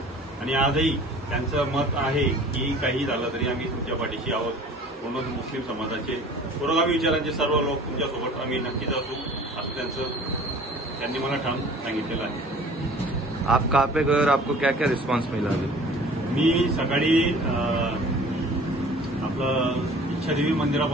आणि आजही त्यांचं मत आहे की काही झालं तरी आम्ही तुमच्या पाठीशी आहोत. म्हणून मुस्लिम समाजाचे पुरोगामी विचारांचे सर्व लोक तुमच्यासोबत आम्ही नक्कीच असू असं त्यांनी मला ठाम सांगितलेलं आहे. आप कहाँ पे गए और आपको क्या क्या रिस्पॉन्स मिला? मी सकाळी आपलं इच्छादेवी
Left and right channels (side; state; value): both; normal; correlation 0.47